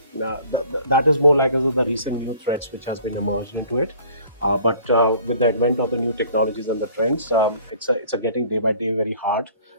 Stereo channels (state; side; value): inverted; both; correlation -0.53